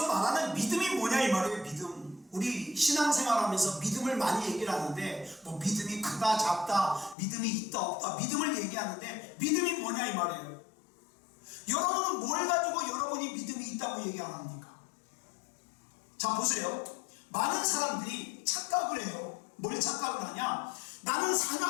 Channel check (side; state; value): right; drops out; at 7.2 s